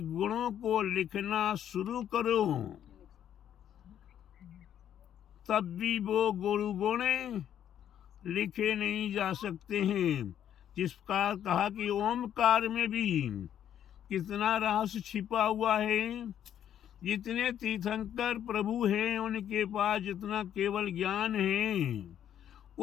गुणों को लिखना शुरू करो, तब भी वो गुरु गुण लिखे नहीं जा सकते हैं। जिस प्रकार कहा कि ओमकार में भी कितना रहस्य छिपा हुआ है। जितने तीर्थंकर प्रभु हैं उनके पास जितना केवल ज्ञान है,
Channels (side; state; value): right; quieter; 10.1 dB